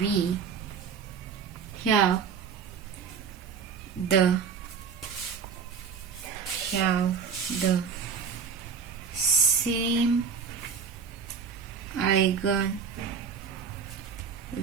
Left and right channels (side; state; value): left; quieter; 6.3 dB